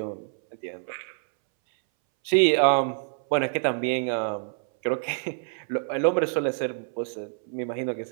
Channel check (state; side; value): silent; left; 61 dB below the other